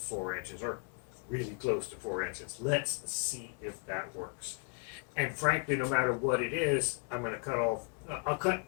inches, or really close to 4 inches. Let's see if that works. And frankly, no matter what it is, I'm going to cut off. I'll cut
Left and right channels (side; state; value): right; quieter; 38.9 dB